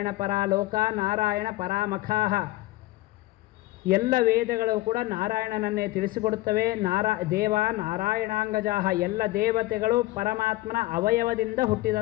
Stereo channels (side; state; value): right; quieter; 18.3 dB